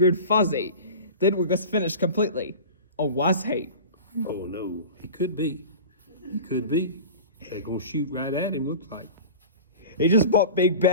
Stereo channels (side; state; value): both; inverted; correlation -0.35